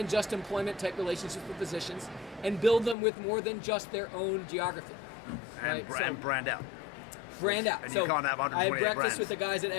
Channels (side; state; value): right; drops out; at 3.0 s